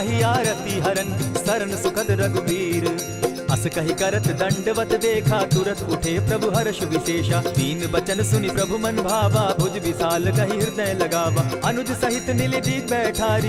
आरती हरन, शरण सुखद रघुवीर। अस कही करत दंडवत देखा, तुरत उठे प्रभु हर्ष विशेषा। तीन बचन सुनि प्रभु मन भावा, भुज विशाल कही हृदय लगावा। अनुज सहित नीलि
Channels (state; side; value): identical; both; correlation 1.00